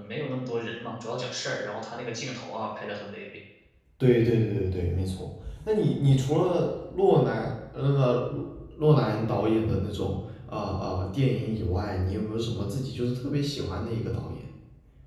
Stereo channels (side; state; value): both; identical; correlation 1.00